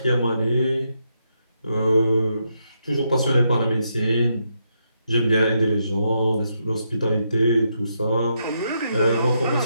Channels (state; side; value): inverted; both; correlation -0.80